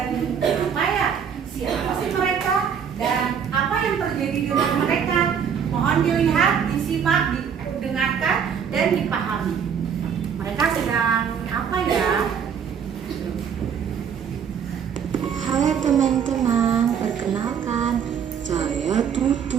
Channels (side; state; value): left; quieter; 7.5 dB